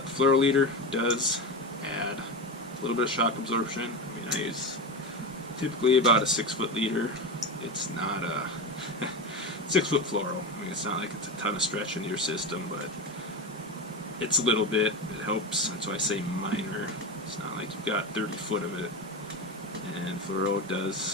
the fluoro leader does add a little bit of shock absorption. I mean, I use typically about a 6-foot leader. It's not a 6-foot fluoro. I mean, it's not like it's a ton of stretch into your system, but it's a little bit. It helps. That's why I say minor. It's not like you've got 30 foot of it. And fluoro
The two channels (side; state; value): both; normal; correlation 0.19